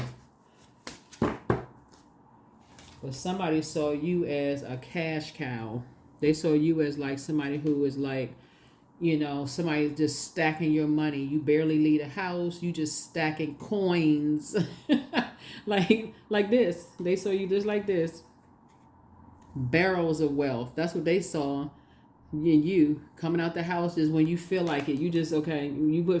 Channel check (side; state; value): both; identical; correlation 1.00